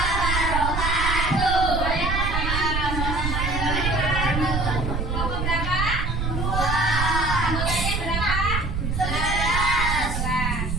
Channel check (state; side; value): noise; right; rumble, 1 dB below the sound